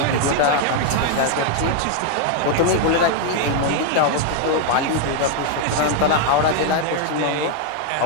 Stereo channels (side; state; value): both; different; correlation 0.00